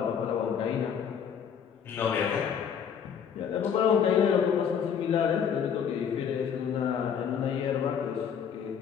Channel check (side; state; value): right; quieter; 7.6 dB